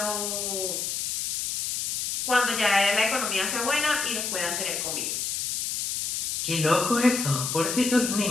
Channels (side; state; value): left; noise; hiss, 1 dB below the sound